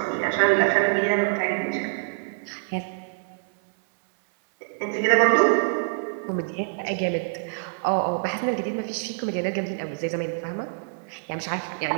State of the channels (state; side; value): silent; left; digital silence